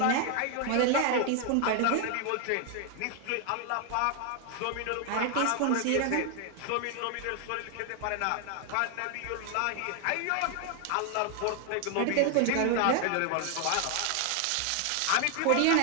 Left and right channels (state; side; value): different; both; correlation 0.01